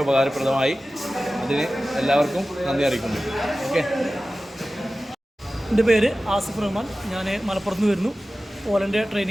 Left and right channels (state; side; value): normal; both; correlation 0.95